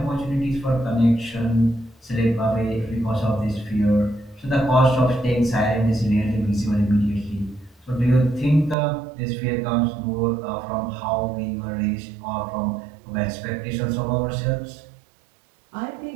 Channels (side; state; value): left; drops out; at 8.8 s